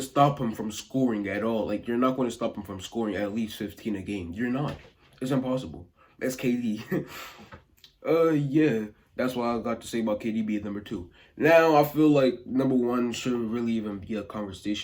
stop him from scoring at all. Like, you're not going to stop him from scoring at least 15 a game. You're not. It's impossible. That's KD. Yeah. That's what I got to say about KD being number 2. Now, I feel like number 1 shouldn't really even be a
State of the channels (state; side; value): identical; both; correlation 1.00